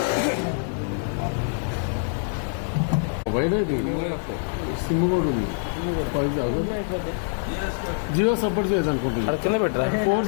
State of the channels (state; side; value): silent; right; 62 dB below the other